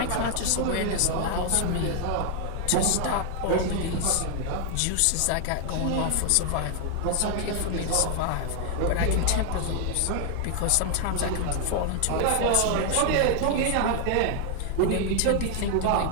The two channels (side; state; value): both; different; correlation 0.00